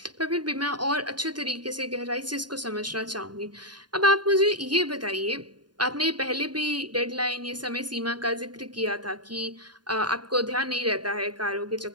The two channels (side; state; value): left; late; 0.70 ms